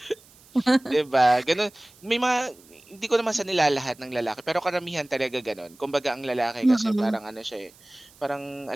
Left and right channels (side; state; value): right; noise; hiss, 26 dB below the sound